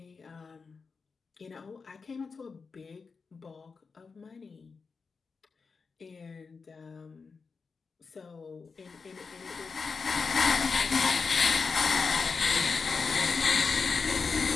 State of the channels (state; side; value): quieter; right; 4.9 dB